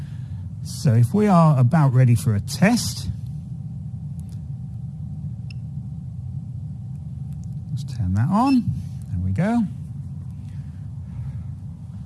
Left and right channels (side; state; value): both; identical; correlation 1.00